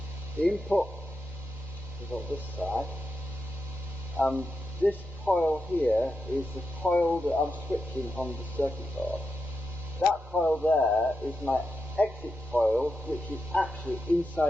The input is on this side, and this coil here is the coil that I'm switching on the circuit board. That coil there is my exit coil, which is actually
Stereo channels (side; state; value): both; normal; correlation 0.87